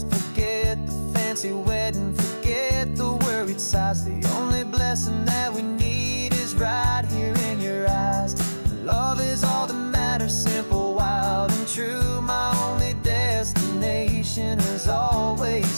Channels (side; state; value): both; inverted; correlation -1.00